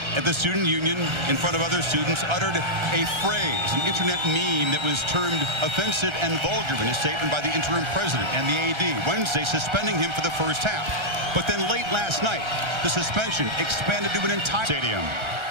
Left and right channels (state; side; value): late; left; 1.3 ms